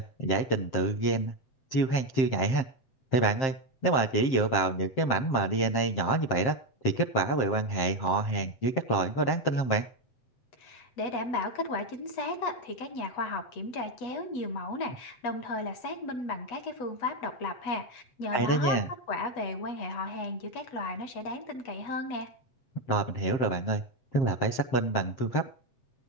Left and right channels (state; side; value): late; right; 7.6 ms